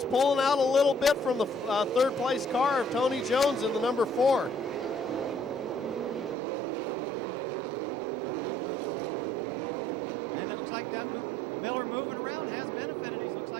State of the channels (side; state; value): left; drops out; at 6.4 s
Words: pulling out a little bit from the third place car of Tony Jones in the number 4. And it looks like that Miller moving around has benefited. He looks